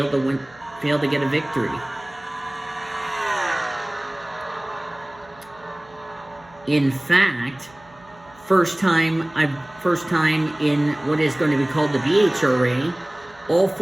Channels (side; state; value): right; noise; hum, 26 dB below the sound